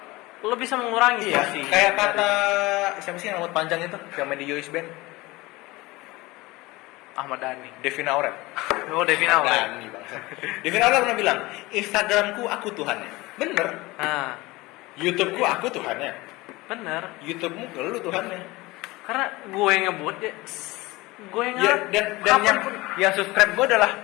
lo bisa mengurangi iya, porsi. kayak kata siapa sih yang rambut panjang itu yang main di Yois Band? Ahmad Dhani. Devina Aurel. Oh, Devina Aurel. Dhani, bangsa. Devina Aurel pernah bilang, Instagramku aku Tuhannya. Bener. Nah, YouTubeku aku Tuhannya. bener. YouTubemu lu Tuhannya. Karena gue yang ngebut ya, gue yang Ya, dan yang subscribe gue adalah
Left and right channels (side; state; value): right; quieter; 21.2 dB